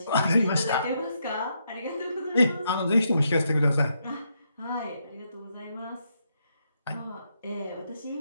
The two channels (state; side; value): inverted; both; correlation -0.79